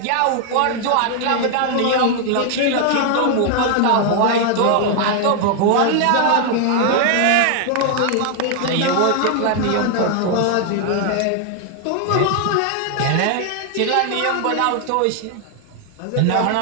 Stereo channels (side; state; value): both; different; correlation 0.00